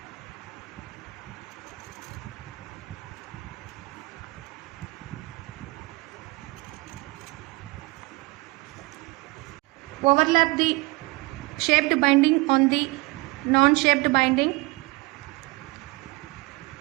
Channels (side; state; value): left; quieter; 23.7 dB